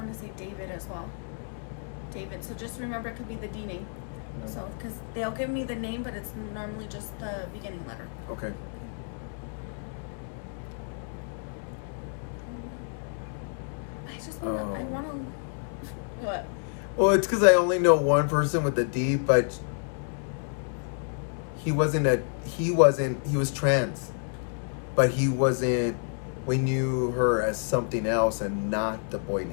to say David as well. David. So just remember, it could be the D name. No. So because they'll give me the name, but it's normally just the beginning letter. Okay. I just want to. I want to. What? Well, it's because I only know one person with a D, but he was trans, but he wasn't, we knew her as something else and not the boy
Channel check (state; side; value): silent; right; 59 dB below the other